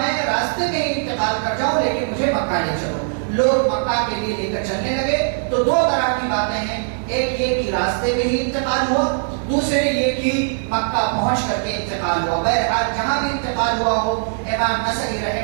راستے میں ہی انتقال کر جاؤں، لیکن مجھے مکہ لے چلو. لوگ مکہ کے لیے لے کر چلنے لگے. تو دو طرح کی باتیں ہیں، ایک یہ کہ راستے میں ہی انتقال ہوا، دوسرے یہ کہ مکہ پہنچ کر کے انتقال ہوا. بہرحال جہاں بھی انتقال ہوا ہو، امام نسائی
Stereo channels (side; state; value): left; silent; 66 dB below the other